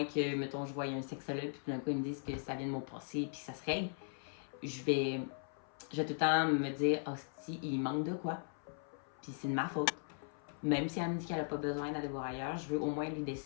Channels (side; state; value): right; silent; 52 dB below the other